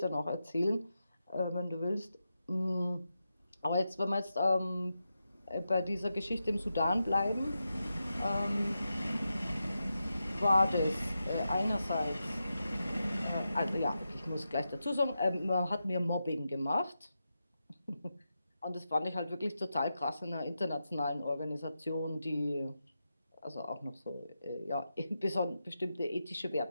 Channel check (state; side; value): inverted; both; correlation -0.89